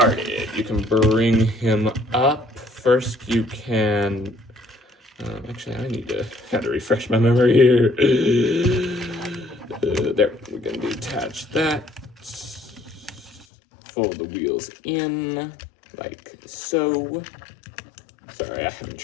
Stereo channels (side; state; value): right; drops out; at 13.5 s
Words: You can bring him up. First, you can... actually, I had to refresh my memory here. There, we're going to detach that. Fold the wheels in, like so. Sorry, I haven't